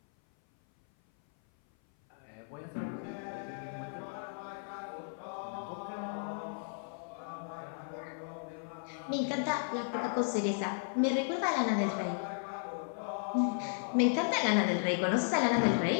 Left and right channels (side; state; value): right; silent; 55 dB below the other